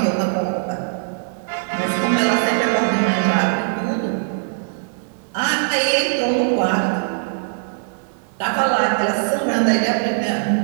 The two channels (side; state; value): left; silent; digital silence